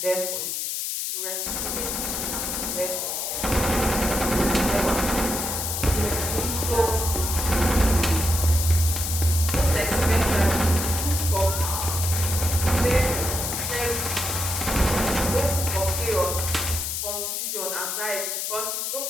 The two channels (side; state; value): left; noise; hiss, 2 dB below the sound